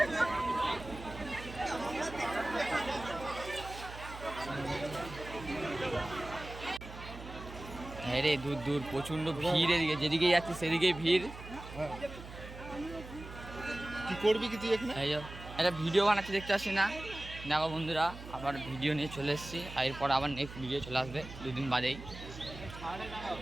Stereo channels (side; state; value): right; noise; hum, 13 dB below the sound